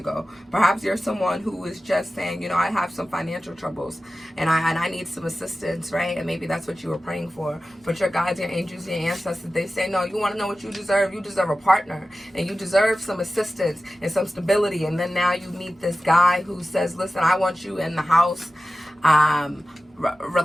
go. Perhaps you're someone who is just saying, I have some financial troubles, and I need some assistance, right? And maybe that's what you were praying for. But your guides, your angels, your ancestors, they say, no, you want to know what you deserve? You deserve a partner, and you deserve some assistance and some stability. And then now you meet this guy who says, listen, I want you in the house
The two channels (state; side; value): normal; both; correlation 0.95